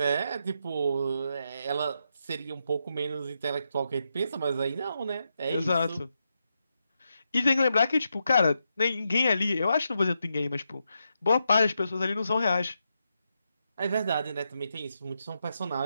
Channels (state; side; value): inverted; both; correlation -0.84